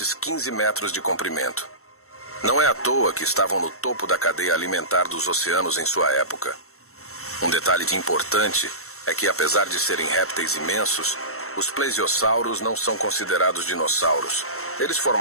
15 metros de comprimento. Não é à toa que estavam no topo da cadeia alimentar dos oceanos em sua época. Um detalhe importante é que, apesar de serem répteis imensos, os plesiosauros não são considerados dinossauros. Eles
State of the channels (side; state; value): right; late; 0.63 ms